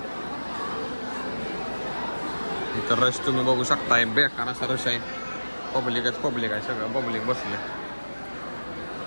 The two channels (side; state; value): both; inverted; correlation -1.00